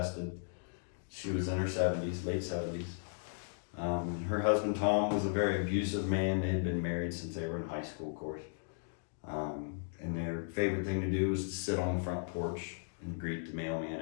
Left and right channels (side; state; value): right; silent; digital silence